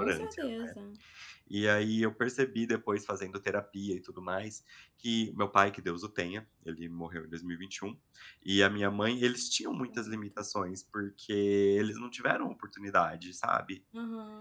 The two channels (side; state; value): both; identical; correlation 1.00